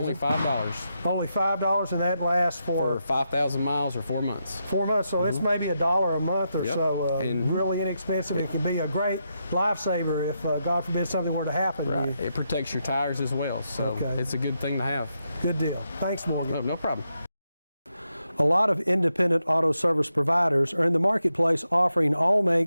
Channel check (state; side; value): inverted; both; correlation -0.84